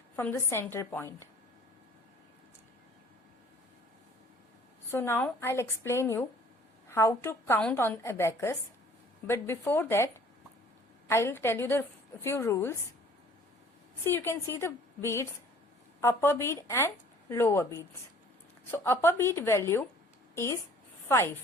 from the center point. So now I'll explain you how to count on abacus, but before that I'll tell you the few rules. See, you can see the beads, upper bead and lower beads. So upper bead value is 5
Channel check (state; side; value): normal; both; correlation 0.53